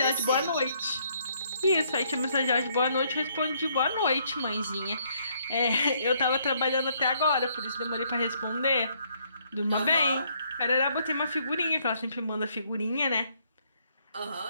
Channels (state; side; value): inverted; both; correlation -0.69